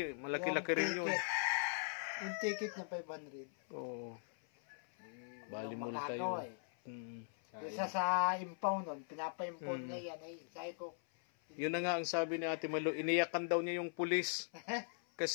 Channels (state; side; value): silent; right; 51 dB below the other